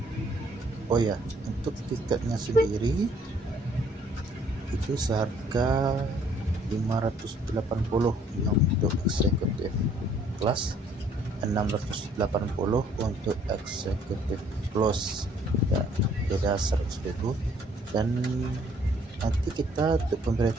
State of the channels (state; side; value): normal; both; correlation 0.61